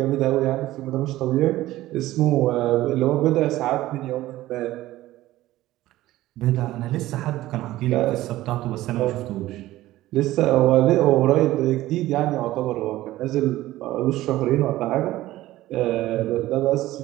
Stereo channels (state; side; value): quieter; left; 16.0 dB